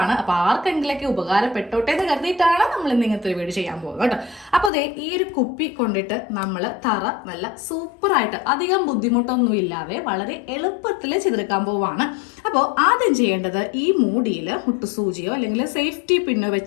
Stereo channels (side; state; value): right; drops out; at 4.7 s